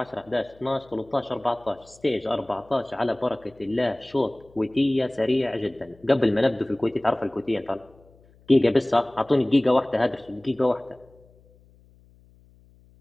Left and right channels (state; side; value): noise; left; hum, 28 dB below the sound